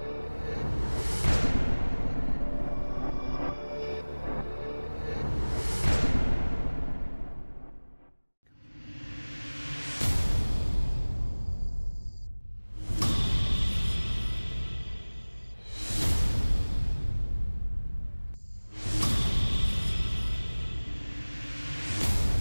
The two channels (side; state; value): both; inverted; correlation -1.00